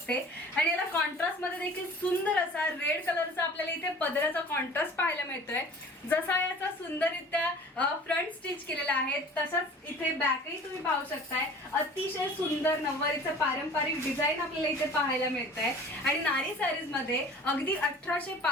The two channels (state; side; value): normal; both; correlation 0.44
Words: आणि याला कॉन्ट्रास्ट मध्ये देखील सुंदर असा रेड कलरचा आपल्याला इथे पदराचा कॉन्ट्रास्ट पाहायला मिळतोय। जसा याचा सुंदररित्या फ्रंट स्टिच केलेला आहे तसाच इथे बॅकही तुम्ही पाहू शकताय। अतिशय सुंदर नववारीचं पारंपरिक डिझाईन आपल्याला इथे पाहायला मिळतंय आणि नारी सारीज मध्ये अगदी 1800